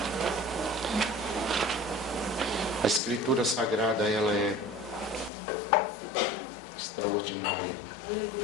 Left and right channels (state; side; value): drops out; right; at 5.3 s